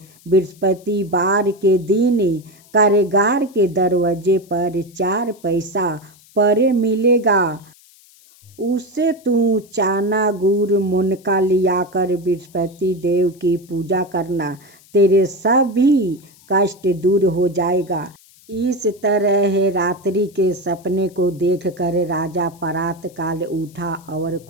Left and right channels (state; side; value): noise; left; hiss, 27 dB below the sound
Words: बृहस्पतिवार के दिन कारागार के दरवाजे पर 4 पैसा पड़े मिलेगा। उससे तू चना गुड़ मुनका लियाकर बृहस्पति देव की पूजा करना, तेरे सभी कष्ट दूर हो जाएगा। इस तरह रात्रि के सपने को देखकर राजा प्रातःकाल उठा और